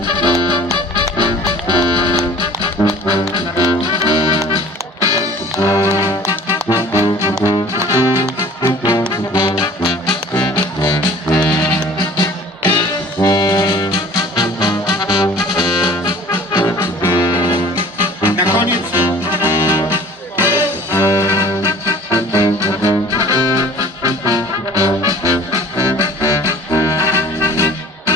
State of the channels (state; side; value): normal; both; correlation 0.47